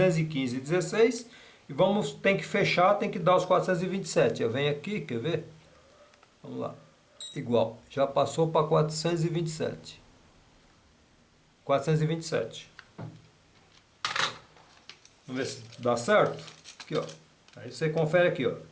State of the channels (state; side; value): identical; both; correlation 1.00